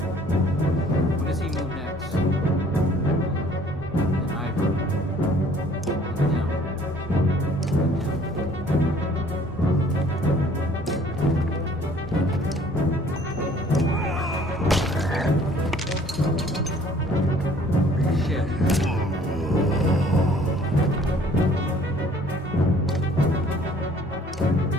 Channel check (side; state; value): both; normal; correlation 0.56